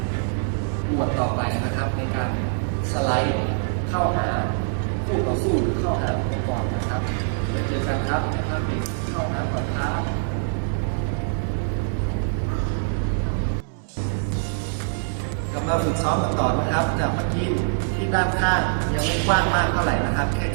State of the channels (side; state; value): left; silent; 63 dB below the other